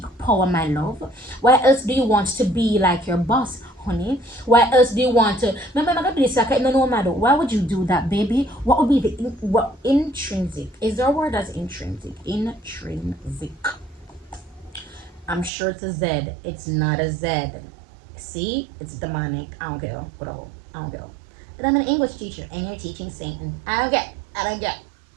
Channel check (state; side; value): drops out; left; at 15.5 s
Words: power, my love? Why else do you want to be like your boss? honey. Why else do you want to? Remember, I'm gonna do this. Like, no matter. Why would you do that, baby? What would be the what intrinsic? Is there a word as intrinsic? Intrinsic. I'm sure it's a Z. It's not a Z. See, it's demonic. I don't care. Bro, I don't care. But I'm an English teacher, and you're teaching Satan. I don't get.